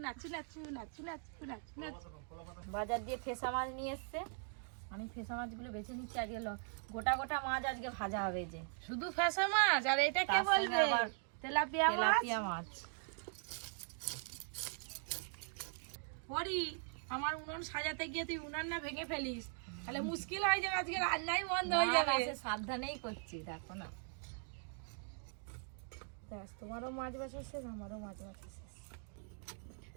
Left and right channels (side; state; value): left; silent; 51 dB below the other